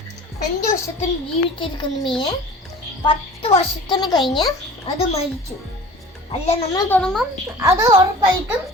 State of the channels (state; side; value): normal; both; correlation 0.42